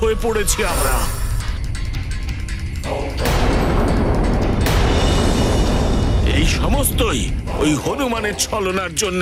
হয়ে পড়েছি আমরা। এই সমস্তই ওই হনুমানের ছলনার জন্য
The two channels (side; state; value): both; identical; correlation 1.00